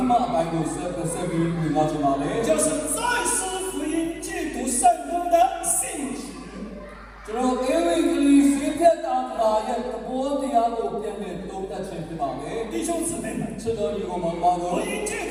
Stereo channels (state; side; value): identical; both; correlation 1.00